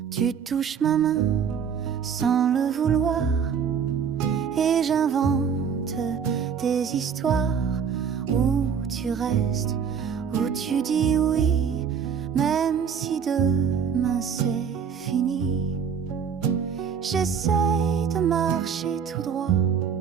Tu touches ma main sans le vouloir, et j'invente des histoires où tu restes, où tu dis oui, même si demain c'est fini. J'essaye de marcher tout droit,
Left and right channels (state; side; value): quieter; left; 7.0 dB